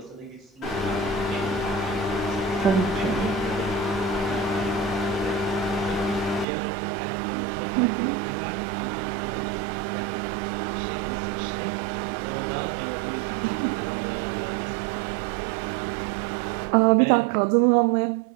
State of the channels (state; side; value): drops out; left; at 6.5 s